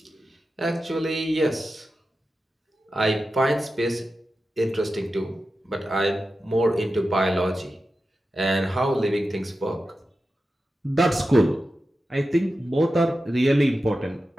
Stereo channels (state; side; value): normal; both; correlation 0.92